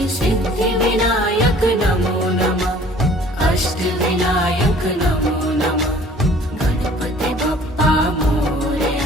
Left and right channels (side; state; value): both; normal; correlation 0.52